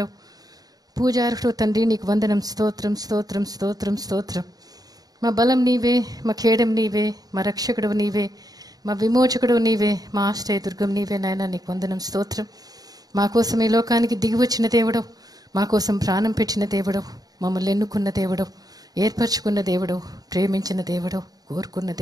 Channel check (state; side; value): late; left; 0.18 ms